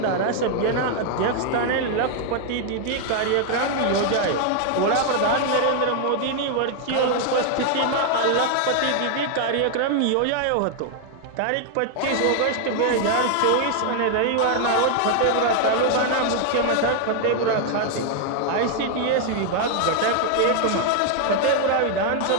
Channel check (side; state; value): both; different; correlation 0.00